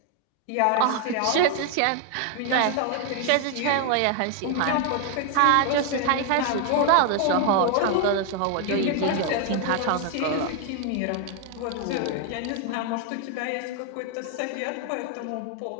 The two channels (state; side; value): different; both; correlation 0.00